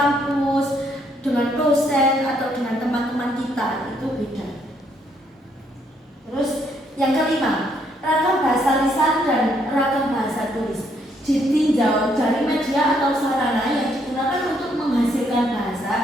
dengan dosen atau dengan teman-teman kita itu beda. Terus yang kelima, ragam bahasa lisan dan ragam bahasa tulis. Ditinjau dari media atau sarana yang digunakan untuk menghasilkan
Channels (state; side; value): normal; both; correlation 0.71